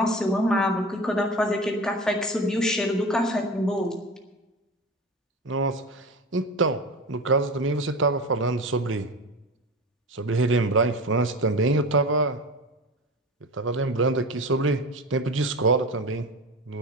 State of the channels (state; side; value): normal; both; correlation 0.30